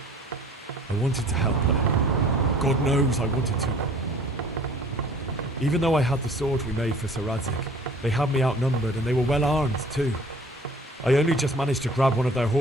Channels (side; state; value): both; normal; correlation 0.51